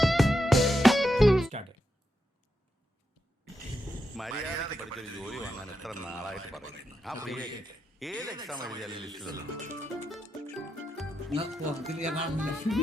മര്യാദയ്ക്ക് പഠിച്ചൊരു ജോലി വാങ്ങാൻ എത്ര നാളായിട്ട് പറയുന്നു. ആ പ്രിയക്ക് ഏത് എക്സാം എഴുതിയാലും ലിസ്റ്റിലല്ലോ.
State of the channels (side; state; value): both; normal; correlation 0.85